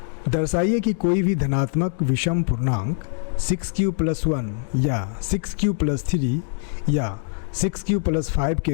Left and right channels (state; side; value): silent; right; digital silence